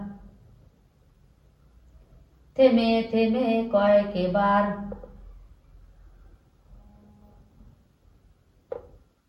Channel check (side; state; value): both; identical; correlation 1.00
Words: থেমে থেমে কয়েকবার।